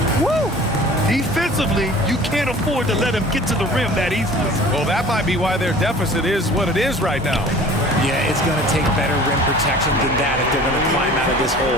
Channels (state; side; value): normal; both; correlation 0.45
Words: Woo! Defensively, you can't afford to let him get to the rim that easily. Well, that might be why their deficit is what it is right now. Yeah, it's going to take better rim protection than that if they're going to climb out of this